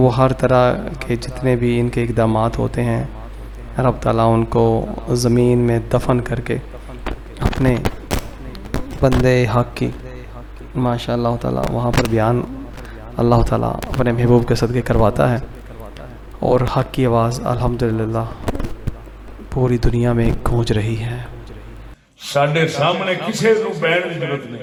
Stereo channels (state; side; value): identical; both; correlation 1.00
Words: ہر طرح کے جتنے بھی ان کے اقدامات ہوتے ہیں رب تعالیٰ ان کو زمین میں دفن کر کے اپنے بندے حق کی ماشاء اللہ تعالیٰ وہاں پر بیان اللہ تعالیٰ اپنے محبوب کے صدقے کرواتا ہے اور حق کی آواز الحمدللہ پوری دنیا میں گونج رہی ہے. ساڈے سامنے کسی کو بہن کی ضرورت